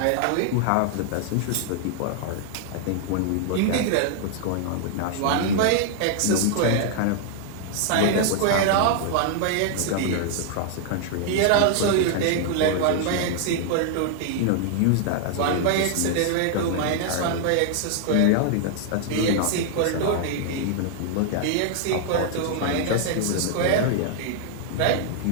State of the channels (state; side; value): different; both; correlation 0.00